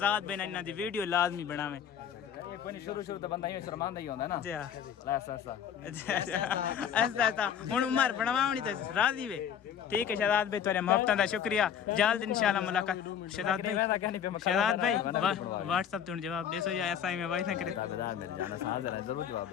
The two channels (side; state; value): right; quieter; 8.6 dB